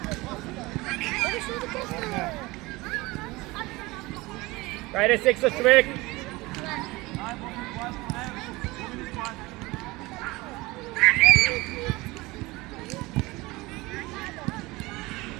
Хайде секса човек!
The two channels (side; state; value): left; quieter; 21.8 dB